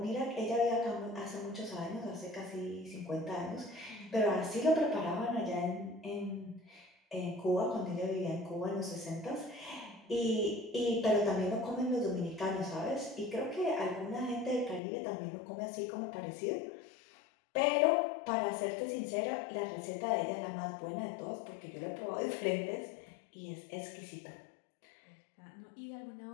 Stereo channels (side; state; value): right; drops out; at 14.8 s